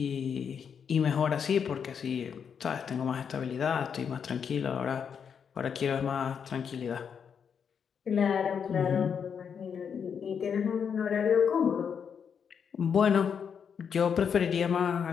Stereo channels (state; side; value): quieter; right; 7.1 dB